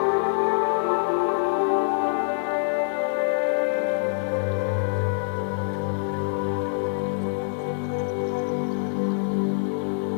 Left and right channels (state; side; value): silent; right; digital silence